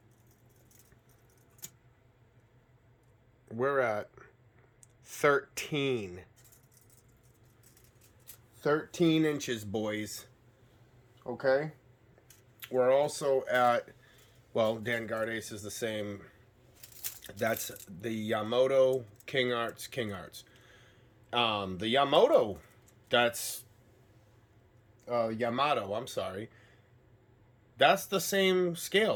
we're at 13 inches, boys. Okay, we're also at, well, Danguard Ace is the same. That's the Yamato King Arts. The Yamato, that's Yamato, I'm sorry. That's the same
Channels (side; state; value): both; identical; correlation 1.00